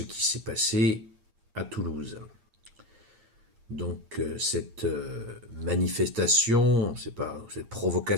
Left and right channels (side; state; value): left; late; 8.6 ms